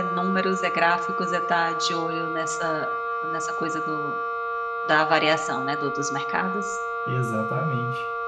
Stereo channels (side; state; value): both; identical; correlation 1.00